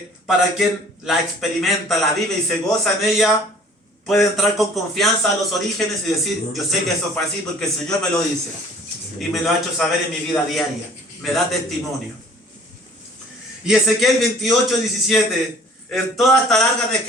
para quien la experimenta, la vive y se goza en ella, puede entrar con confianza a los orígenes y decir, yo sé que eso fue así porque el Señor me lo dice. Y me lo ha hecho saber en mi vida diaria. Me da testimonio. Y Ezequiel 28:17, en toda esta larga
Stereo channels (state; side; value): normal; both; correlation 0.52